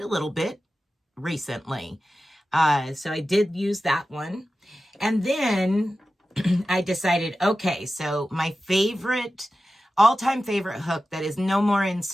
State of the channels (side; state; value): both; normal; correlation 0.94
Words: a little bit recently. So I did use that one. And then I decided, okay, so my all-time favorite hook that is no more in